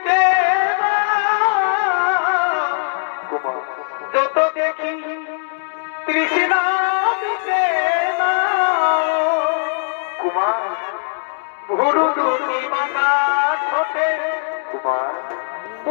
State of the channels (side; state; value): right; silent; digital silence